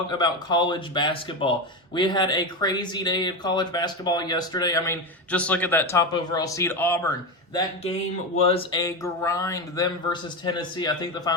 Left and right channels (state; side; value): normal; both; correlation 0.16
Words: about college basketball. We had a crazy day of college basketball yesterday. I mean, just look at that top overall seed, Auburn. That game was a grind, them versus Tennessee. I think the